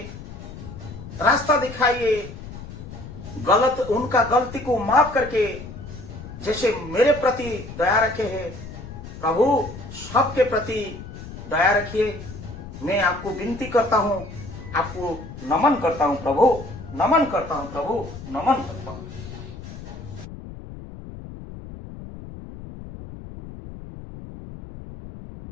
रास्ता दिखाइए। उनका गलती को माफ करके जैसे मेरे प्रति दया रखे हैं, प्रभु सबके प्रति दया रखिए। मैं आपको विनती करता हूँ, आपको नमन करता हूँ प्रभु, नमन करता हूँ प्रभु, नमन करता हूँ।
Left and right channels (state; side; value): noise; left; rumble, 13 dB below the sound